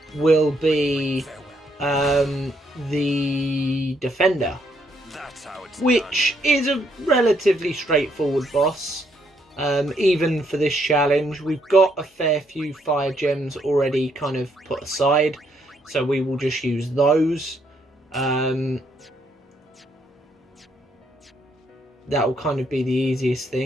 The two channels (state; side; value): normal; both; correlation 0.73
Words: will be the Defender, which is a relatively straightforward boss. Even for this challenge, we've got a fair few fire gems already kind of put aside, so we will just use those. That will kind of be the easiest